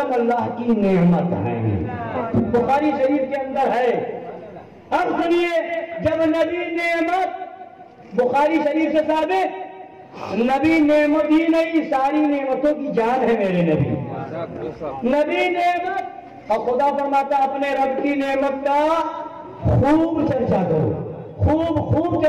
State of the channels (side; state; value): both; identical; correlation 1.00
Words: اللہ کی نعمت ہے، بخاری شریف کے اندر ہے۔ اب سنیے، جب نبی نعمت بخاری شریف سے ثابت، نبی نعمت ہی نہیں ساری نعمتوں کی جان ہے میرے نبی، نبی نعمت، اور خدا فرماتا اپنے رب کی نعمت کا خوب چرچا کرو، خوب